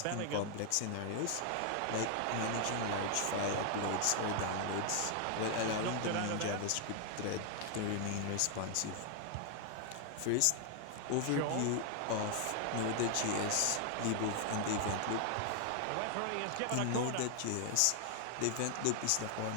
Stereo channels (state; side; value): different; both; correlation 0.00